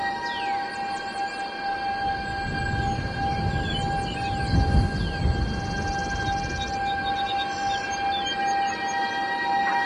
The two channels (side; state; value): both; identical; correlation 1.00